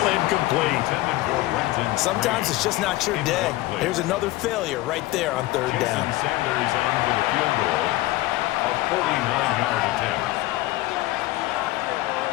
incomplete. Sometimes it's just not your day. Here's another failure right there on 3rd down. Sanders on for the field goal. A 49-yard attempt.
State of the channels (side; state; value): right; quieter; 18.1 dB